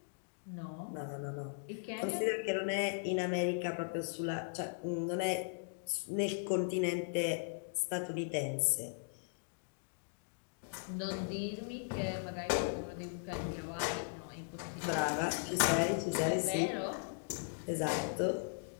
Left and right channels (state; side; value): silent; right; digital silence